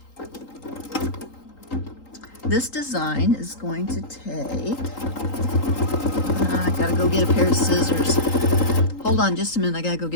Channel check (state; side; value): late; right; 3.8 ms